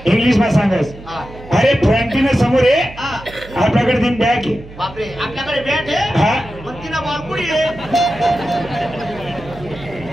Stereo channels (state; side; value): noise; right; hum, 17 dB below the sound